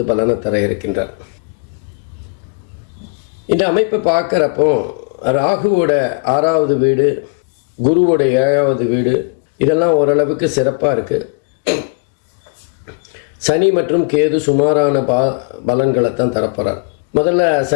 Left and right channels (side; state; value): right; quieter; 37.1 dB